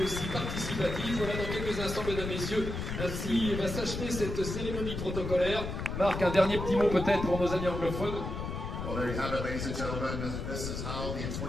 aussi participatif. Voilà, dans quelques instants, mesdames, messieurs, ainsi va s'achever cette cérémonie protocolaire. Marc, un dernier petit mot peut-être pour nos amis anglophones. Well, there you have it, ladies and gentlemen. This is how the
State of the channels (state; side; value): noise; left; rumble, 5 dB below the sound